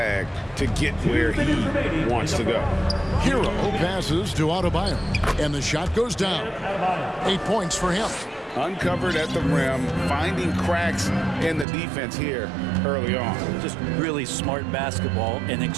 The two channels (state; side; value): drops out; left; at 11.7 s